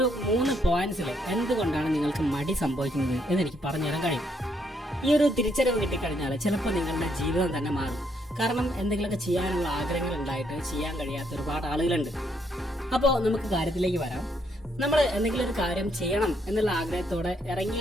3 പോയിന്റ്സിൽ എന്തുകൊണ്ടാണ് നിങ്ങൾക്ക് മടി സംഭവിക്കുന്നത് എന്നെനിക്ക് പറഞ്ഞു തരാൻ കഴിയും. ഈ ഒരു തിരിച്ചറിവ് കിട്ടിക്കഴിഞ്ഞാൽ ചിലപ്പോൾ നിങ്ങളുടെ ജീവിതം തന്നെ മാറും. കാരണം എന്തെങ്കിലുമൊക്കെ ചെയ്യാനുള്ള ആഗ്രഹങ്ങൾ ഉണ്ടായിട്ട് ചെയ്യാൻ കഴിയാത്ത ഒരുപാട് ആളുകളുണ്ട്. അപ്പോൾ നമുക്ക് കാര്യത്തിലേക്ക് വരാം. നമ്മൾ എന്തെങ്കിലും ഒരു കാര്യം ചെയ്യണം എന്നുള്ള ആഗ്രഹത്തോടെ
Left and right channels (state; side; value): normal; both; correlation 0.73